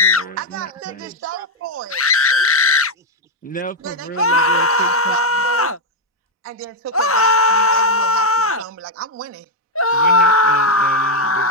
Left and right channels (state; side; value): normal; both; correlation 0.02